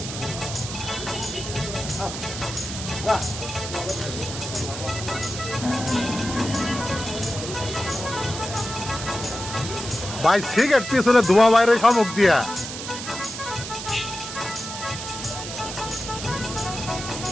ভাই সিগারেট পিছনে ধোঁয়া বাইরে শামুক দিয়া।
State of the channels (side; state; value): right; noise; hiss, 8 dB below the sound